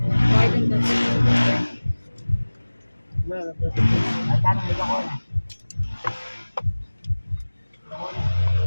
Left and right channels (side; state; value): both; inverted; correlation -1.00